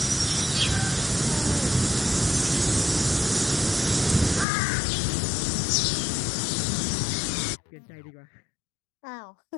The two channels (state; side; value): drops out; right; at 4.5 s